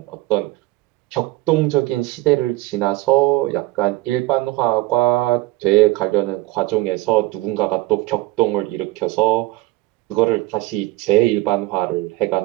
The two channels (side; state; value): left; quieter; 19.3 dB